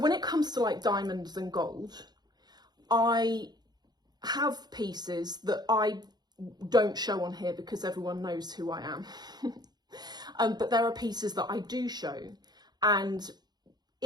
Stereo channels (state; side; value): late; left; 0.20 ms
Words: it comes to like diamonds and gold, I have pieces that I don't show on here because everyone knows who I am. But there are pieces that I do show, and